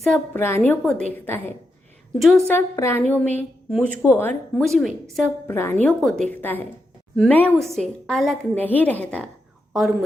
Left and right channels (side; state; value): both; normal; correlation 0.85